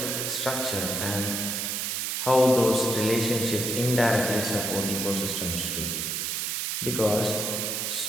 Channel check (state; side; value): noise; right; hiss, 1 dB below the sound